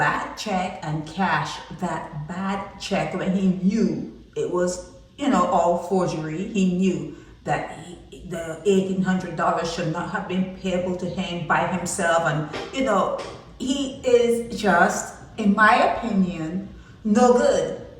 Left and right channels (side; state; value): both; identical; correlation 1.00